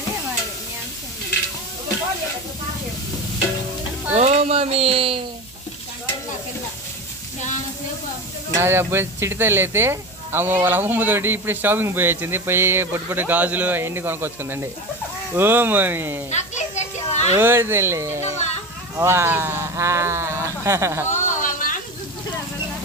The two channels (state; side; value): noise; right; hum, 25 dB below the sound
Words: ఓ మమ్మీ నాది అప్పుడు చిటితల్లి అయితే వాళ్ళ అమ్మమ్మతోటి ఇప్పుడు షాపింగ్ పోయి వచ్చింది పోయి పొట్టి గాజులు అవన్నీ కొనుక్కొచ్చుకుందండి ఓ మమ్మీ ఓ తల్లి